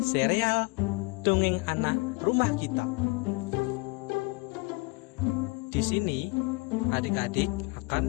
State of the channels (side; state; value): right; quieter; 28.1 dB